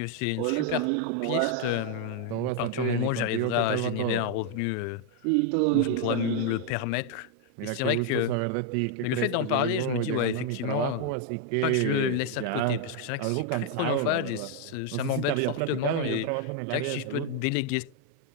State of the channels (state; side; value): different; both; correlation 0.01